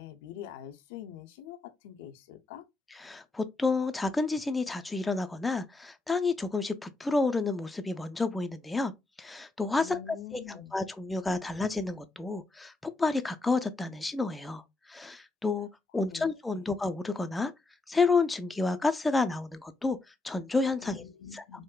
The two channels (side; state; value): right; quieter; 3.2 dB